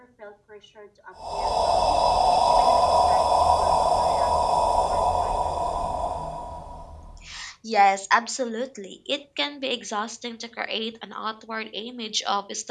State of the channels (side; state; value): both; identical; correlation 1.00